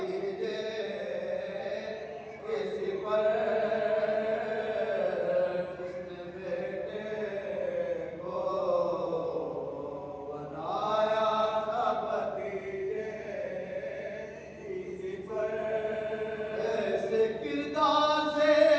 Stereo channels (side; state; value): both; identical; correlation 1.00